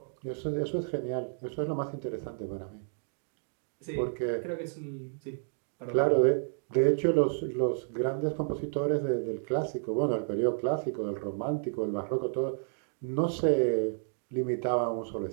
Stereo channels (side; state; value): left; silent; digital silence